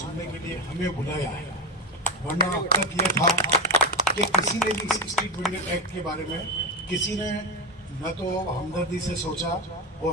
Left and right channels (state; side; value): normal; both; correlation 0.14